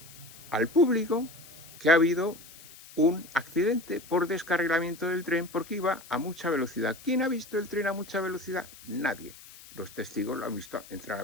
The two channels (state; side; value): noise; left; hiss, 19 dB below the sound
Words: al público que ha habido un accidente por descarrilamiento del tren porque iba a mucha velocidad. ¿Quién ha visto el tren a mucha velocidad? Nadie. Los testigos lo han visto entrar a